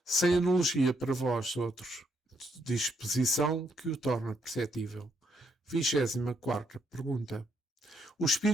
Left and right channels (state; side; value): normal; both; correlation 0.75